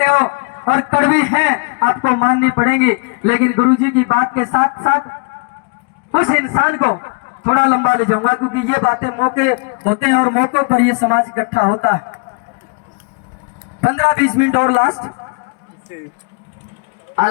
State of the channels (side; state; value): right; quieter; 35.4 dB